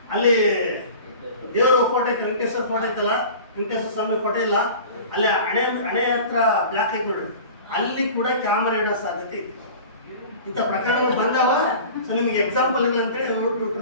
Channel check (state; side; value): inverted; both; correlation -0.40